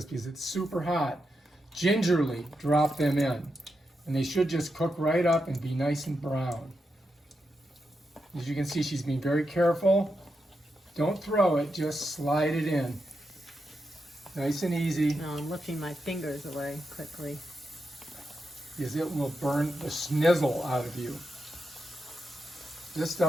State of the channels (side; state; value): both; normal; correlation 0.86